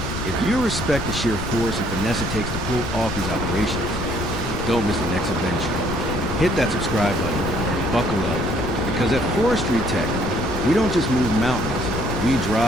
if you respect the sheer force and finesse it takes to pull off these operations, don't miss the next adventure. Hit that subscribe button and buckle up, because at Forestry Tech, we don't just move mountains, We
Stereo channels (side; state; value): left; noise; rumble, 6 dB below the sound